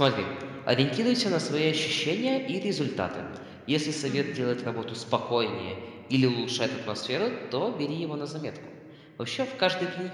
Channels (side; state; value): both; identical; correlation 1.00